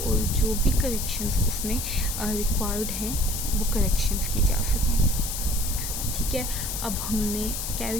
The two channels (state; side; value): noise; left; hiss, 4 dB below the sound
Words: जो भी करेक्शंस उसमें रिक्वायर्ड हैं वो करेक्शंस की जा सकें। ठीक है, अब हमने